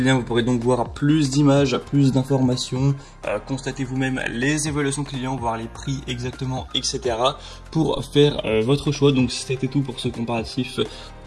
vous pourrez donc voir plus d'images, plus d'informations, constater vous-même les évaluations clients, voir les prix exactement, etc. pour faire votre choix. Donc c'était tout pour ce comparatif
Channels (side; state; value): both; identical; correlation 1.00